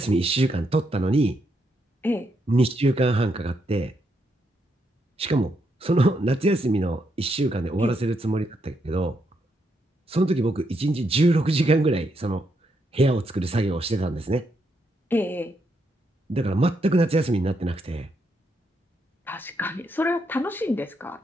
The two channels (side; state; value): both; normal; correlation 0.79